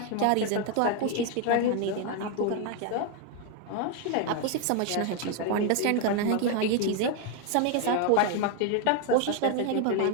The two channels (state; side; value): different; both; correlation 0.01